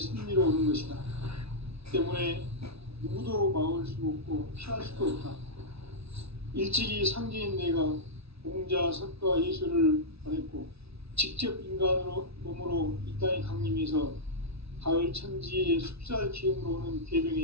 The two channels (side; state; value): left; late; 0.79 ms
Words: 오는 것이다. 때문에 누구도 막을 수 없고 피할 수도 없다. 일찍이 상제인 내가 공자, 석가, 예수를 보냈고 직접 인간으로 몸으로 이 땅에 강림해서 가을 천지의 숲살 기운으로 오는